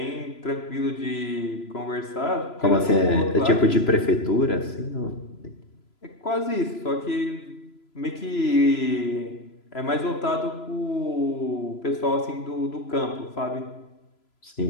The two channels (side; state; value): right; late; 3.0 ms